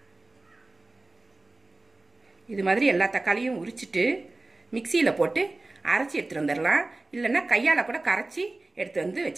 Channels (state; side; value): quieter; left; 3.0 dB